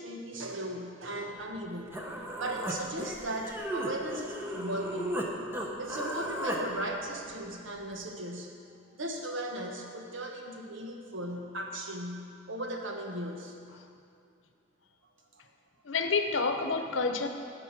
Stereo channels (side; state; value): both; normal; correlation 0.05